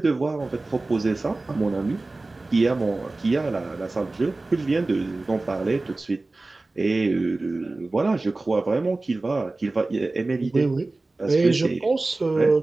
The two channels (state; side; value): quieter; left; 3.2 dB